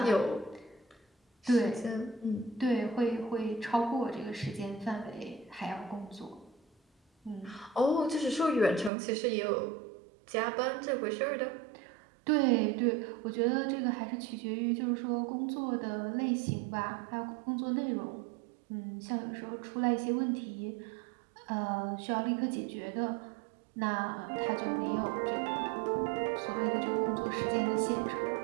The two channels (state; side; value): drops out; left; at 8.9 s